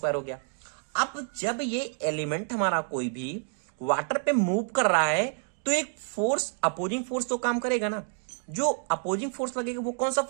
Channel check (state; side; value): silent; left; 59 dB below the other